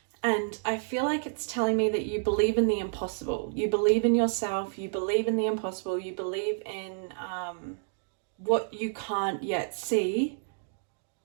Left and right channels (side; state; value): left; silent; digital silence